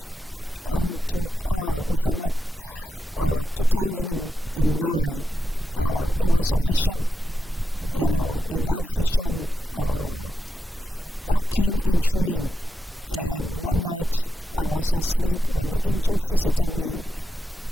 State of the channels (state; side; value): normal; both; correlation 0.88